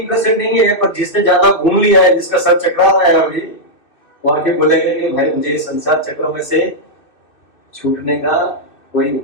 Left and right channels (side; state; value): right; late; 2.6 ms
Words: नहीं है, पर जिसने ज्यादा घूम लिया है, जिसका सर चकरा रहा है अभी, वो आके बोलेगा कि भाई मुझे संसार चक्र में से छूटने का कोई